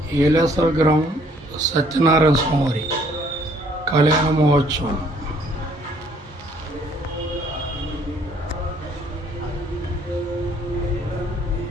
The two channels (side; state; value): both; normal; correlation 0.62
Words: ఏలేశ్వర గ్రామం సత్యనారాయణ స్వామి కళ్యాణ మహోత్సవం